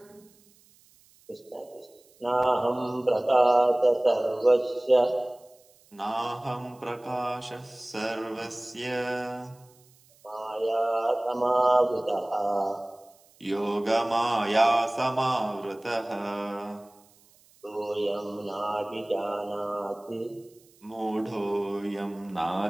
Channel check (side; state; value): right; noise; hiss, 30 dB below the sound